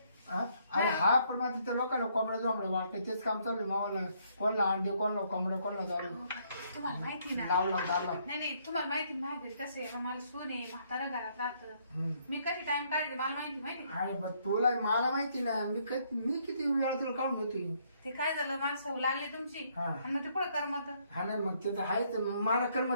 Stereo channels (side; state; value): both; inverted; correlation -0.69